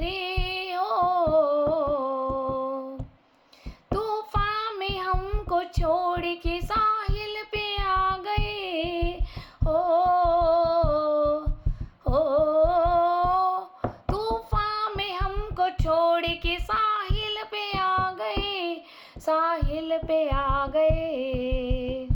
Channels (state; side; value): identical; both; correlation 1.00